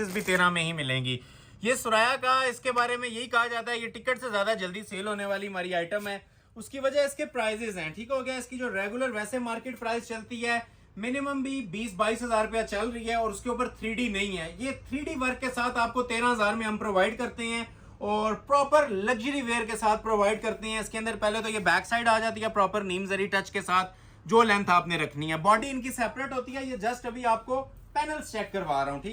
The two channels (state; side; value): identical; both; correlation 1.00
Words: भी 13 में ही मिलेंगी। ये सुराया का, इसके बारे में यही कहा जाता है ये टिकट से ज्यादा जल्दी सेल होने वाली हमारी आइटम है। उसकी वजह इसके प्राइजेस हैं, ठीक हो गया। इसकी जो रेगुलर वैसे मार्केट प्राइस चलती है मिनिमम भी 20-22 हजार रुपया चल रही है, और उसके ऊपर 3D नहीं है। ये 3D वर्क के साथ आपको 13,000 में हम प्रोवाइड करते हैं और प्रॉपर लग्जरी वेयर के साथ प्रोवाइड करते हैं। इसके अंदर पहले तो ये बैक साइड आ जाती है प्रॉपर नीम जरी टच के साथ, जो लेंथ आपने रखनी है। बॉडी इनकी सेपरेट होती है, ये जस्ट अभी आपको पैनल्स चेक करवा रहा हूँ,